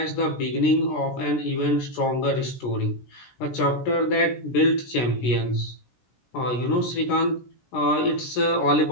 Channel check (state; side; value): late; right; 16 ms